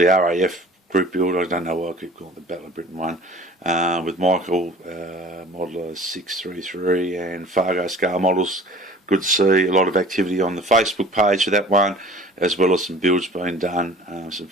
RAF group build. I don't know why I keep calling it the Battle of Britain one, with Michael, Modeler 633 and Fargo scale models. Good to see a lot of activity on the Facebook page for that one, as well as some builds being done, some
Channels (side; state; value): both; normal; correlation 0.45